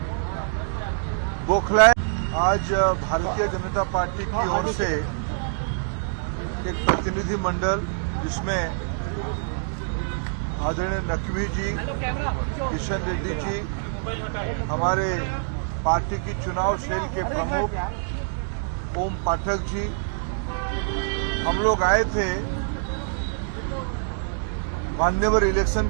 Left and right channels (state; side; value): silent; left; digital silence